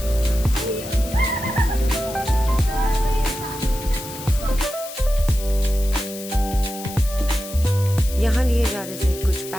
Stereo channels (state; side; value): noise; left; hiss, 12 dB below the sound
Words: यहाँ लिए जा रहे थे कुछ